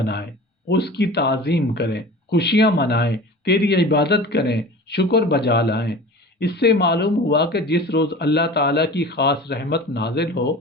اس کی تعظیم کریں، خوشیاں منائیں، تیری عبادت کریں، شکر بجا لائیں۔ اس سے معلوم ہوا کہ جس روز اللہ تعالیٰ کی خاص رحمت نازل ہو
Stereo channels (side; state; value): both; normal; correlation 0.37